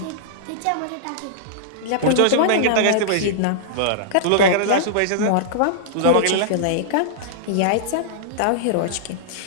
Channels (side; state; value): both; different; correlation -0.02